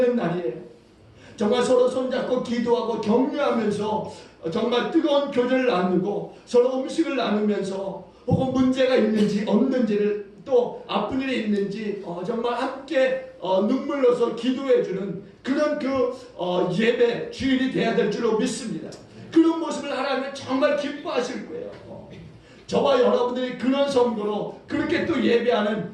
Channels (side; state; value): both; identical; correlation 1.00